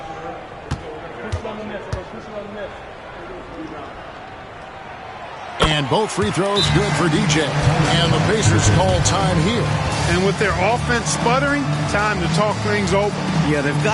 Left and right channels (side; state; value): both; identical; correlation 1.00